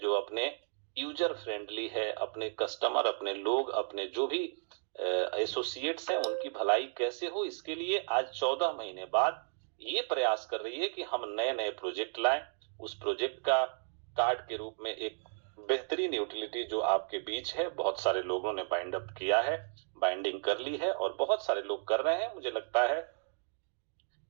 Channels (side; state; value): left; silent; digital silence